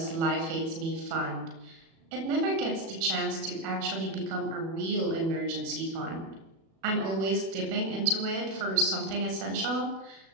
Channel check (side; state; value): left; late; 36 ms